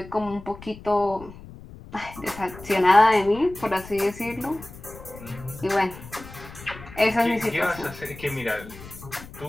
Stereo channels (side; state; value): left; noise; rumble, 16 dB below the sound